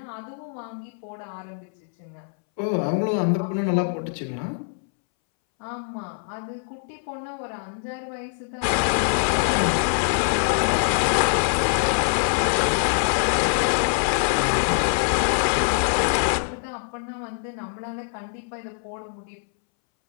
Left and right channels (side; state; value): right; silent; 62 dB below the other